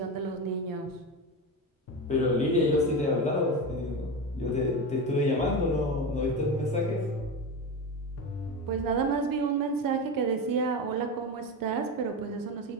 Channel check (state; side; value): normal; both; correlation 0.21